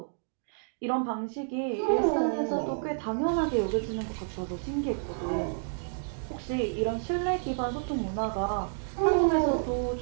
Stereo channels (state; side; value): silent; left; digital silence